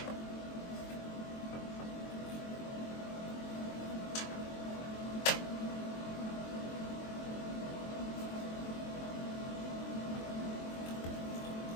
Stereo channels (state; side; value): late; right; 23 ms